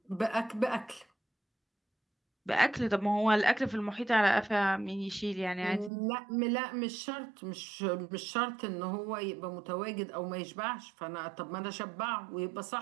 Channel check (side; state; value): left; drops out; at 5.9 s